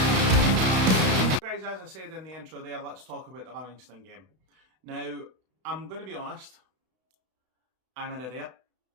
Guys, as I said in the intro there, let's talk about the Livingston game. Now, I'm going to be honest, I'm an idiot.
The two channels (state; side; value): late; left; 32 ms